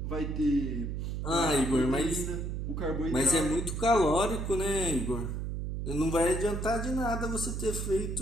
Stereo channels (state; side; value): noise; right; hum, 3 dB below the sound